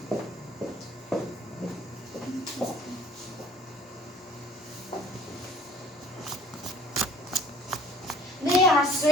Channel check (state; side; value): normal; both; correlation 0.50